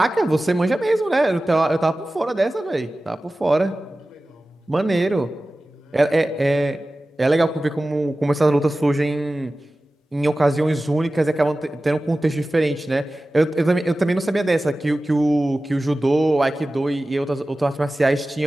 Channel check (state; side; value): normal; both; correlation 0.96